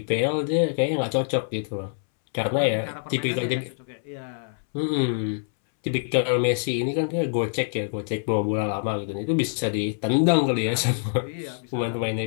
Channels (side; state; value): right; silent; 62 dB below the other